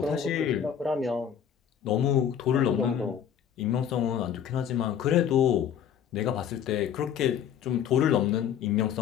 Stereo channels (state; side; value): quieter; right; 8.8 dB